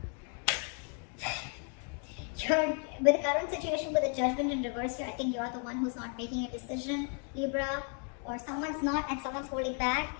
With the current situation with the Judgment in reverse here, I think you're the one who's not making a decision, Libra, or someone's not and someone's holding back.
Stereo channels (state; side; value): quieter; right; 39.4 dB